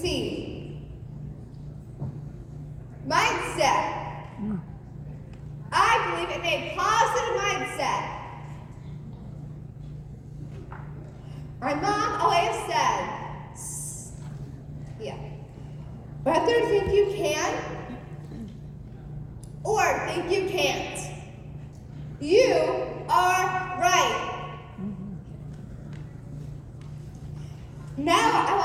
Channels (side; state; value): both; identical; correlation 1.00